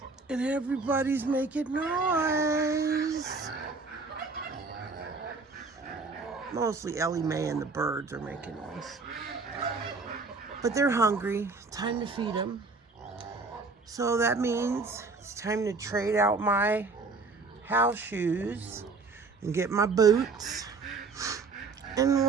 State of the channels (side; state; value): left; quieter; 4.1 dB